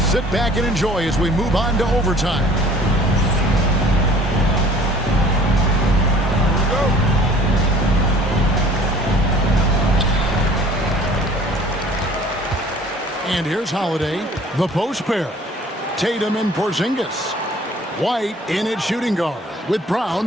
back and enjoy as we move on to overtime. And here's Holiday, the post pair. Tatum and Porzingis. White in at shooting guard, with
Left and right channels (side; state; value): both; normal; correlation 0.51